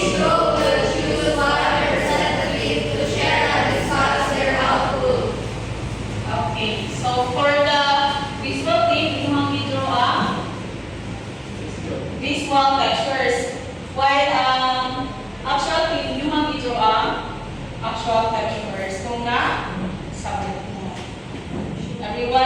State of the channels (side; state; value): both; identical; correlation 1.00